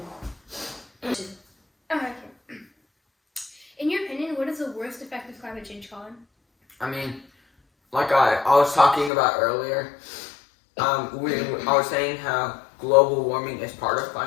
Okay. In your opinion, what is the worst effect of climate change, Colin? I mean, like I was talking about earlier, I was saying how global warming is part of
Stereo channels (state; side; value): drops out; right; at 9.1 s